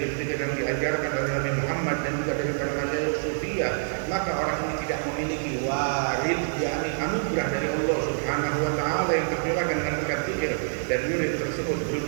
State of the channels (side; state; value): left; silent; 61 dB below the other